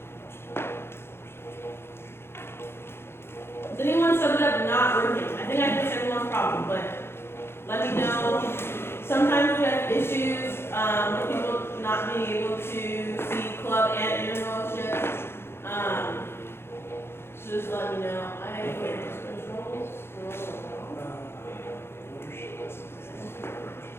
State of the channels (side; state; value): right; late; 0.12 ms